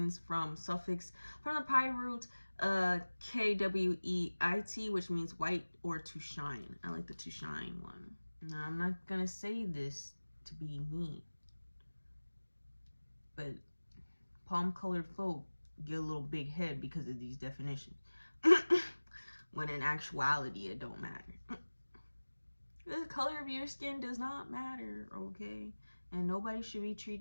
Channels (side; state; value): both; inverted; correlation -1.00